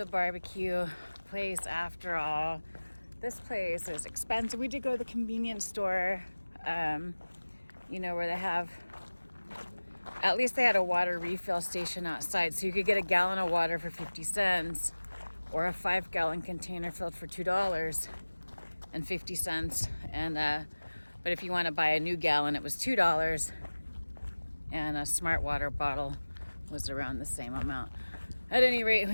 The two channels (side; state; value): both; inverted; correlation -1.00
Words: barbecue place after all. This place is expensive. We did go to the convenience store, you know, where they have, at least they had a water refill station outside. So you could get a gallon of water for 50 cents or a 5-gallon container filled for $2.50. And, but if you want to buy a new gallon, it was $2. And a smart water bottle was around the same amount. At any rate,